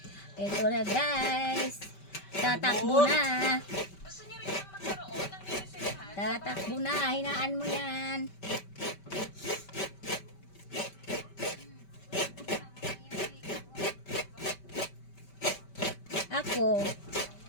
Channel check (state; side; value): late; right; 5.2 ms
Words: Ito na guys. Tatakbo na. Tatakbo na, hinaan mo yan. Ako,